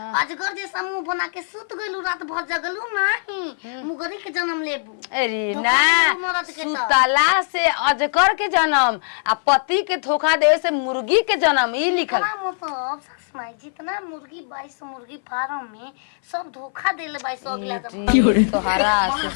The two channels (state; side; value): silent; right; 61 dB below the other